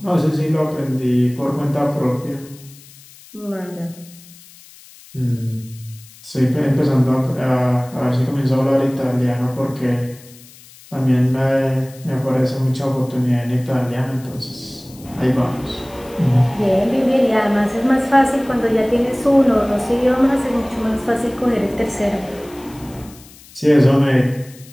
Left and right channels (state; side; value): noise; left; hiss, 22 dB below the sound